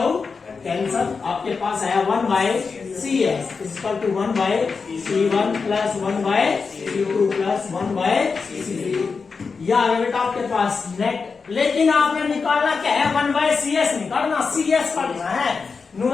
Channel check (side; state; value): right; quieter; 5.0 dB